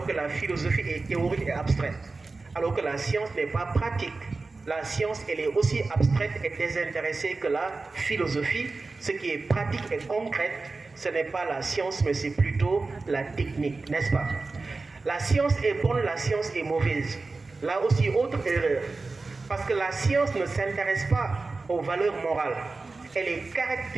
que la philosophie est théorique et abstraite. Alors que la science n'est pas pratique. La science, elle est aussi abstraite et désintéressée que la philosophie. Ce qui est pratique et concret, ce n'est pas la science, mais c'est plutôt la technique, n'est-ce pas? La science est bonne, la science est mauvaise. Là aussi, autre erreur. Parce que la science ne s'intéresse pas aux valeurs morales. Elle est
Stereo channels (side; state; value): left; quieter; 3.7 dB